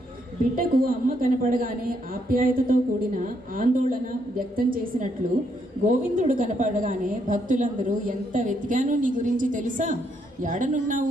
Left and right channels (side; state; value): both; normal; correlation 0.75